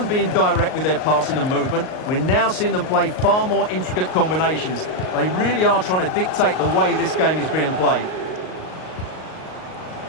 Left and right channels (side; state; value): right; late; 38 ms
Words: being direct with their passing and movement, we're now seeing them play far more intricate combinations. They really are trying to dictate the way this game is being played.